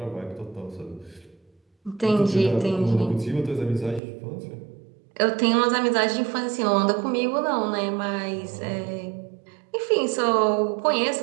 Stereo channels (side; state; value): left; drops out; at 4.0 s